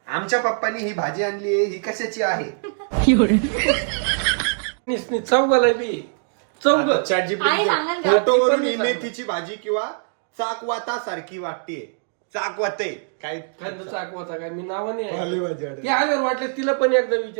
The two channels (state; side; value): silent; left; digital silence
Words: आमच्या पप्पानी ही भाजी आणली आहे ही कशाची आहे. चौघाला बी चौघ ChatGPT आई सांगाल का? फोटोवरून ही मेथीची भाजी किंवा चाकवाता सारखी वाटतेय. चाकवते काय खांदा चाकवाचा काय मी नावाने पालेभाजी आहे. ते आल्यावर वाटलं तिला पण एकदा